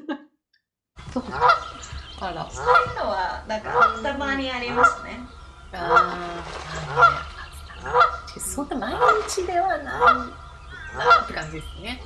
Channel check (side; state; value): both; identical; correlation 1.00